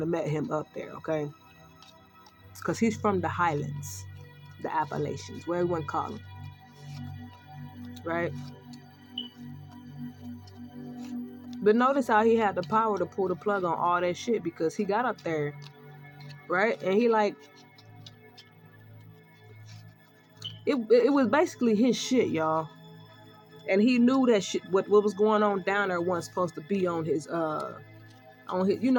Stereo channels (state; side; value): identical; both; correlation 1.00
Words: have met him up there, okay? Because he's from the highlands, the Appalachians, where everyone call him. Right? But notice how he had the power to pull the plug on all that shit, because he got up there, right? And he it was basically his shit, y'all. And he knew that shit, what was going on down there wasn't supposed to be on his on